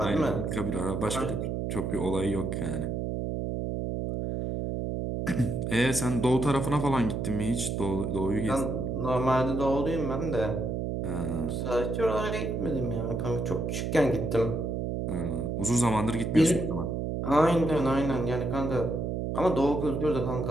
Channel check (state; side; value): noise; right; hum, 2 dB below the sound